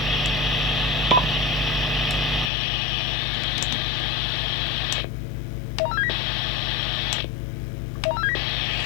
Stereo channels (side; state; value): right; drops out; at 2.5 s